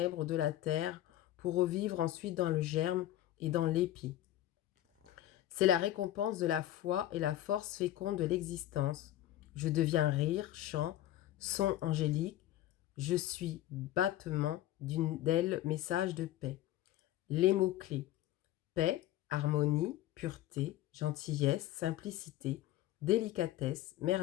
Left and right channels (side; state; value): right; quieter; 13.9 dB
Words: de la terre pour revivre ensuite dans le germe et dans l'épi. C'est la récompense de la foi et la force féconde de l'existence. Je deviens rire, chant, son angélique. Je suis battement d'ailes, message de paix. Les mots-clés: paix, harmonie, pureté, gentillesse, simplicité, délicatesse,